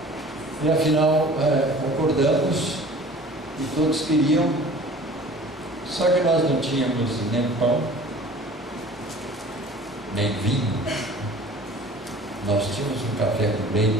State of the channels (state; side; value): normal; both; correlation 0.45